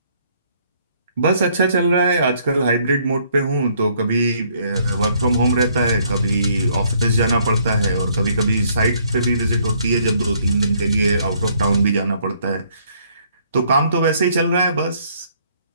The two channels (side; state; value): both; inverted; correlation -0.66